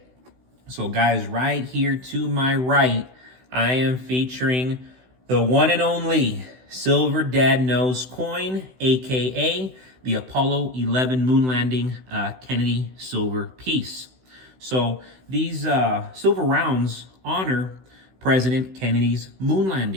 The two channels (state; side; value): late; left; 16 ms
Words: So, guys, right here to my right, I am featuring the one and only Silver Dad Knows coin, aka the Apollo 11 moon landing Kennedy silver piece. So these silver rounds honor President Kennedy's moon